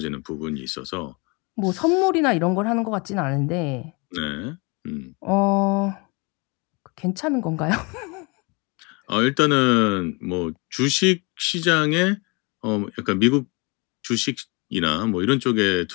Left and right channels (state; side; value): quieter; right; 29.2 dB